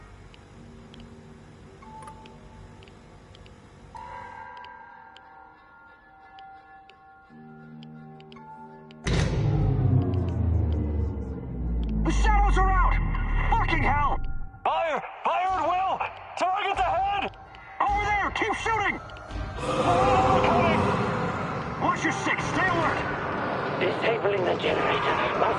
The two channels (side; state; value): both; identical; correlation 1.00